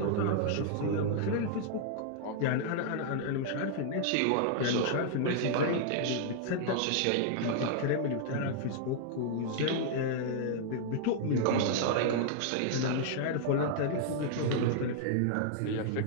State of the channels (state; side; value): different; both; correlation -0.01